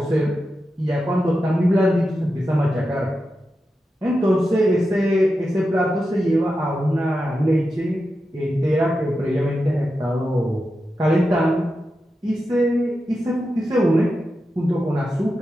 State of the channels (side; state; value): both; normal; correlation 0.89